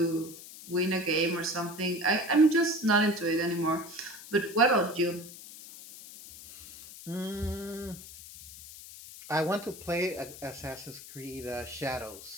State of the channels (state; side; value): noise; left; hiss, 15 dB below the sound